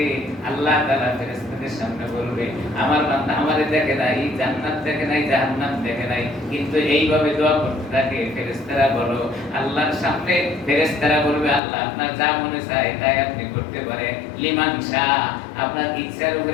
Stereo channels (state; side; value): drops out; right; at 11.6 s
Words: আল্লাহ তাআলা ফেরেশতাদের সামনে বলবে, আমার বান্দা আমারে দেখে নাই, জান্নাত দেখে নাই, জাহান্নাম দেখে নাই, কিন্তু এইভাবে দোয়া করতে থাকে। ফেরেশতারা বলো, আল্লাহর সামনে ফেরেশতারা বলবে, আল্লাহ আপনার যা মনে চায় তাই আপনি করতে পারেন, লিমান শাহ, আপনার ইচ্ছার